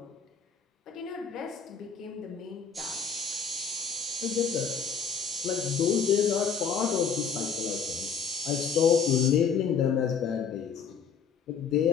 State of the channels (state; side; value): quieter; right; 6.1 dB